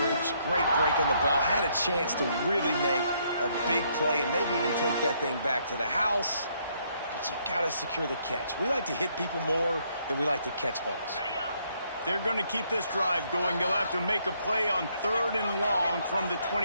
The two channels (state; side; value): inverted; both; correlation -0.71